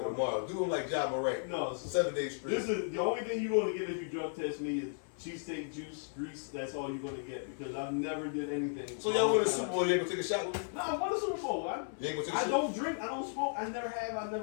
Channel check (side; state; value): right; silent; 54 dB below the other